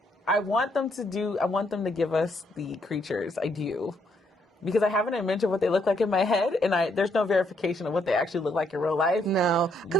I want them to give us the creatures. I do. Because I have an image of what they look like in my head, and there's no verification of what they actually look like in real life. No.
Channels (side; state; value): both; normal; correlation 0.73